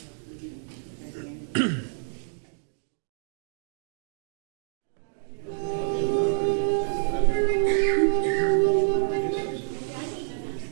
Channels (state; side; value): silent; left; digital silence